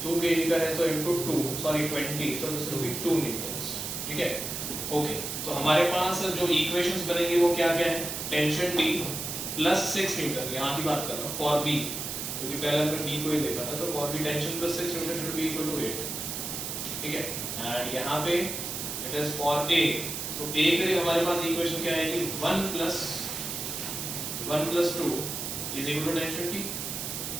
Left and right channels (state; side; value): noise; right; hiss, 5 dB below the sound